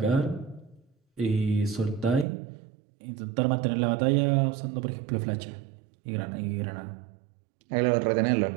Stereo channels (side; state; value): left; drops out; at 2.2 s